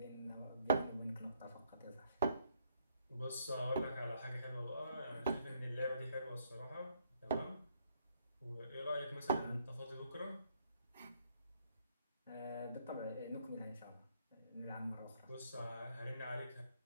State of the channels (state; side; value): inverted; both; correlation -0.69